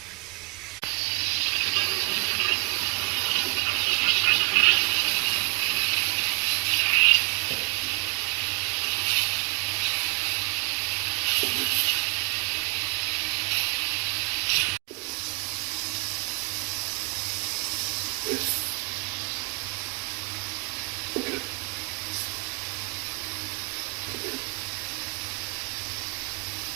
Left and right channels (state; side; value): quieter; left; 31.1 dB